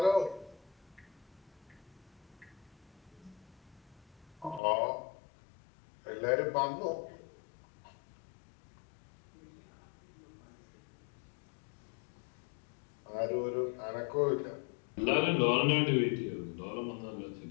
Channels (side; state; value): right; drops out; at 4.6 s